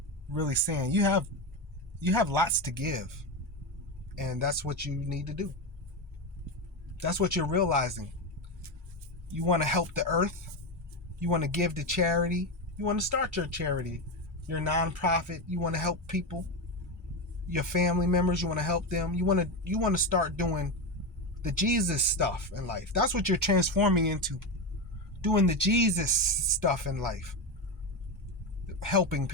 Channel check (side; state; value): both; normal; correlation 0.14